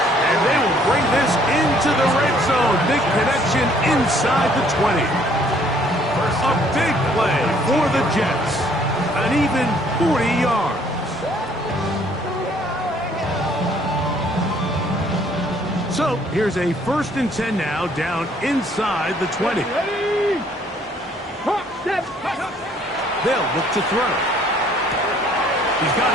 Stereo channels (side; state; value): both; normal; correlation 0.62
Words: And they will bring this into the red zone. Big connection inside the 20. A big play for the Jets. An even 40 yards. So here's a 1st and 10 now down inside the 20. Ready. They'll look to throw. He's got